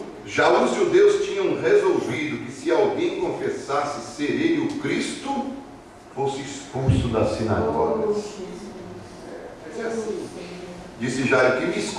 já os judeus tinham resolvido que se alguém confessasse ser ele o Cristo, fosse expulso da sinagoga. Disse Jairo: que me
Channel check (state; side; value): identical; both; correlation 1.00